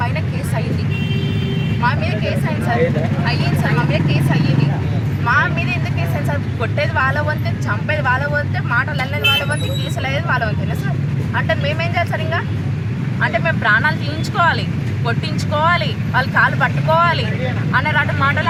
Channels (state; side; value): identical; both; correlation 1.00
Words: కేసు అయ్యింది, మా మీద కేసు అయింది సార్, మా మీద కేసు అయ్యింది. మా మీద ఎందుకు కేసు అయింది సార్? కొట్టేది వాళ్ళ వంతే, చంపేది వాళ్ళ వంతే, మాటలు అల్లేది వాళ్ళ వంతే, కేసులు అయ్యేది వాళ్ళ వంతేనా సార్? అంటే మేమేం చేయాలి సార్? ఇంకా అంటే మేము ప్రాణాలు తీయించుకోవాలి, కొట్టించుకోవాలి, వాళ్ళు కాలు పట్టుకోవాలి అనే రాటి మాటలు